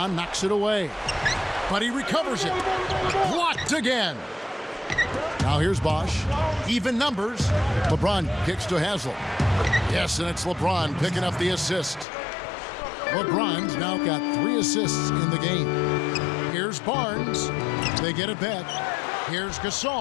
knocks it away. But he recovers it. Blocked again. Now here's Bosch. Even numbers. LeBron kicks to Haslam. Yes, and it's LeBron picking up the assist. LeBron's now got 3 assists in the game. Here's Barnes. They get it back. Here's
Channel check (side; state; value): right; drops out; at 12.1 s